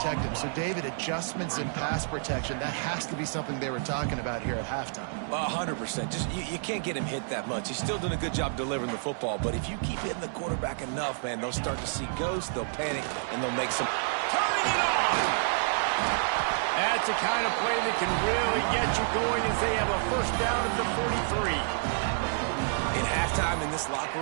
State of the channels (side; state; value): left; silent; digital silence